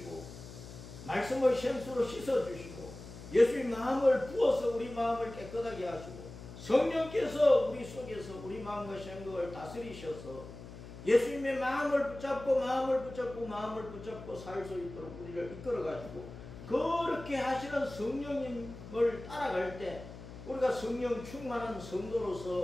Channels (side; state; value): left; noise; hum, 14 dB below the sound